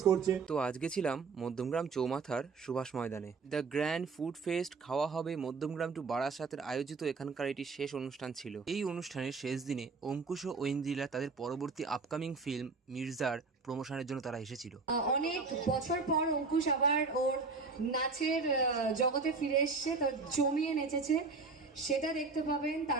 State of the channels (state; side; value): quieter; left; 4.4 dB